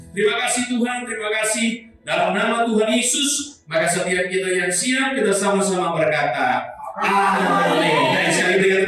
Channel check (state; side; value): identical; both; correlation 1.00